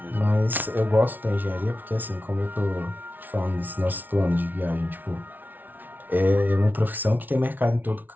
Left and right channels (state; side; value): late; left; 0.085 ms